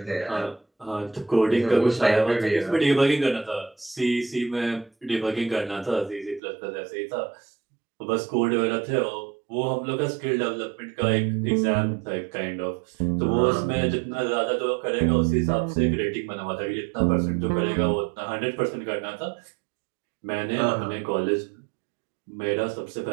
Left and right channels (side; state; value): left; drops out; at 6.4 s